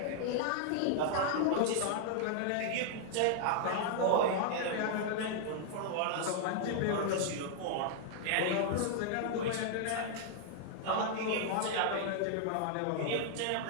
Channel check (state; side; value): different; both; correlation 0.00